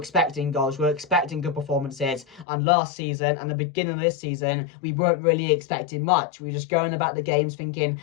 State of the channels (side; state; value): right; drops out; at 2.5 s